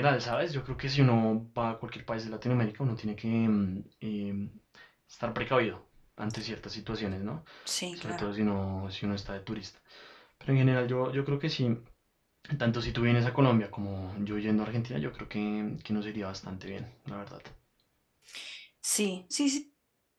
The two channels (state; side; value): identical; both; correlation 1.00